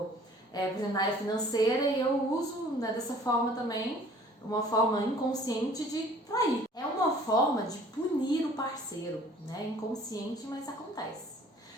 por exemplo, na área financeira, e eu uso, né, dessa forma também, uma forma inconsciente de trair. É uma forma de punir o parceiro, né? Inconsciente, mas acontece.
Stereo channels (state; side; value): normal; both; correlation 0.52